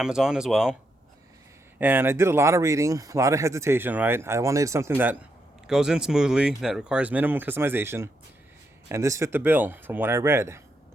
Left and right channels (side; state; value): both; normal; correlation 0.81